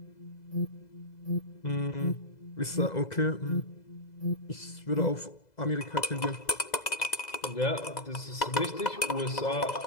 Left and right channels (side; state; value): right; late; 2.0 ms